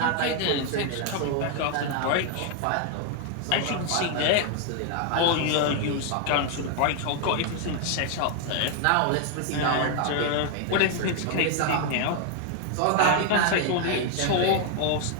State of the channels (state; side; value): different; both; correlation 0.00